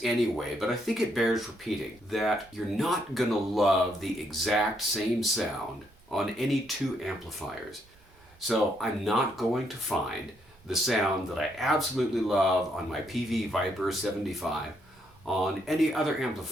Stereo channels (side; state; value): right; noise; rumble, 28 dB below the sound